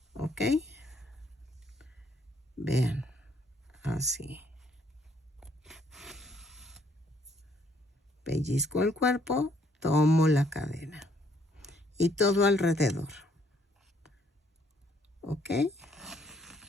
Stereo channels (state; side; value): normal; both; correlation 0.67